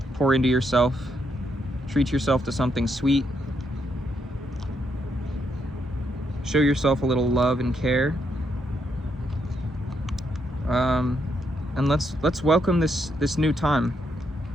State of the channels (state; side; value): normal; both; correlation 0.78